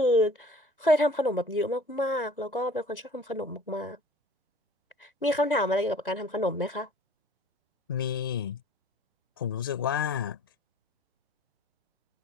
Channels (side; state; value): both; normal; correlation 0.49